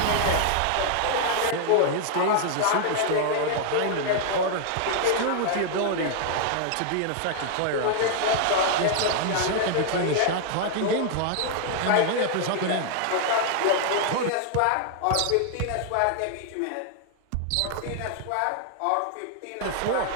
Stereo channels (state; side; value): different; both; correlation 0.00